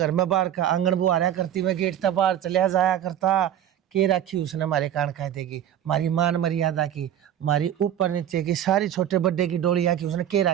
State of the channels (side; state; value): left; quieter; 10.7 dB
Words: में बाहर का आंगन बुहारा करती मैं गेट तक बाहर चलिया जाया करता। के रखी उसने मारे कान खाए देगी, मारी मान मर्यादा की, मारी ऊपर नीचे की सारी छोटे बड्डे की डोलिया की उसने के